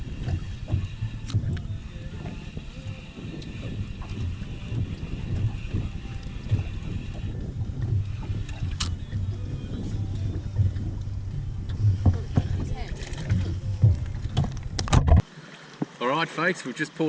Alright folks, we've just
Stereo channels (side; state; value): both; identical; correlation 1.00